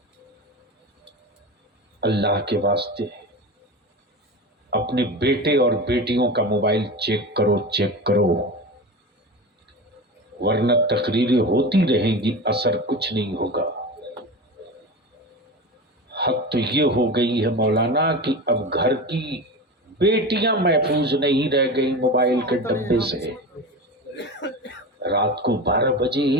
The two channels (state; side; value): normal; both; correlation 0.27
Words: अल्लाह के वास्ते अपने बेटे और बेटियों का मोबाइल चेक करो, वरना तकरीरें होती रहेंगी, असर कुछ नहीं होगा। हद तो ये हो गई है मौलाना कि अब घर की बेटियां महफूज नहीं रह गई मोबाइल के डब्बे से। रात को 12 बजे